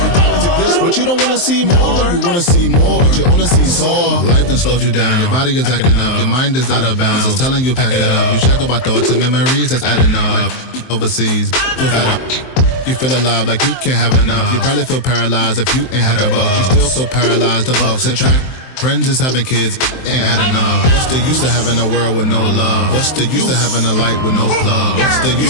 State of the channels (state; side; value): late; right; 23 ms